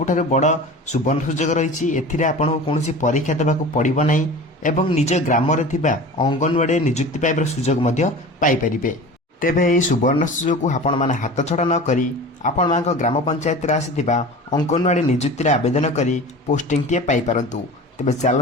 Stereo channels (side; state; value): both; normal; correlation 0.36